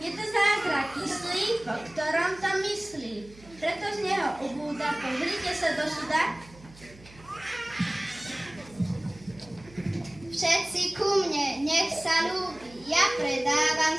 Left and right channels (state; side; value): noise; right; hum, 22 dB below the sound